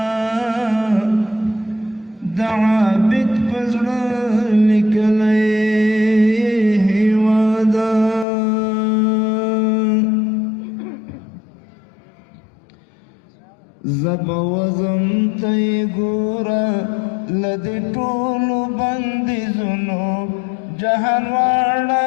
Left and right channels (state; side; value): drops out; right; at 8.2 s